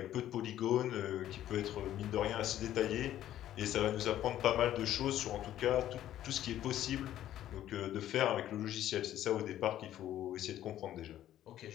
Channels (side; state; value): right; quieter; 12.3 dB